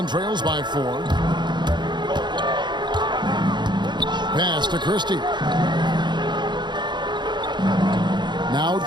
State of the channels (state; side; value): late; left; 0.22 ms